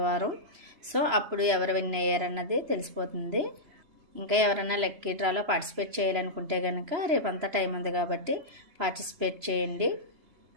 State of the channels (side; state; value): left; late; 3.0 ms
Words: సో అప్పుడు ఎవరు విన్ అయ్యారన్నది తెలిసిపోతుంది. ఇంకా ఎవరైనా లక్కీ డ్రాలో పార్టిసిపేట్ చేయాలనుకుంటే కనుక రేపంతా టైం ఉంది కాబట్టి పార్టిసిపేట్ చేయండి.